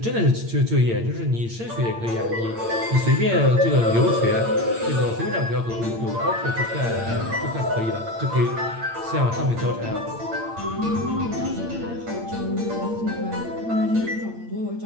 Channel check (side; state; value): left; late; 8.8 ms